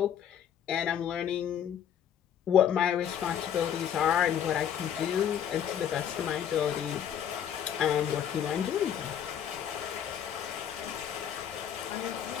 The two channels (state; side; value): quieter; right; 9.3 dB